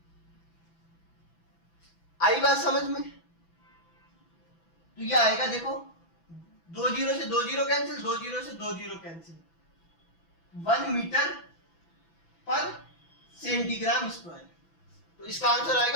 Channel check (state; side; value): late; right; 6.0 ms